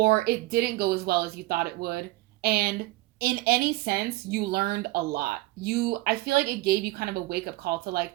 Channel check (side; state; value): left; quieter; 19.4 dB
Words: it didn't go as well as you thought it would. And in any sense, you learned a lot. I feel like it gave you kind of a wake-up call to